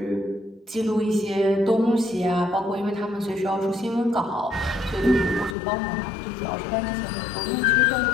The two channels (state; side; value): drops out; right; at 5.6 s